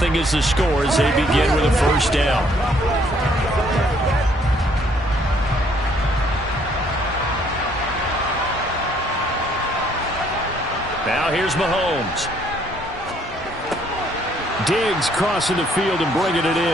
is the score as they begin with a first down. Now here's Mahomes. Diggs crossing the field and bringing it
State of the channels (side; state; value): both; normal; correlation 0.65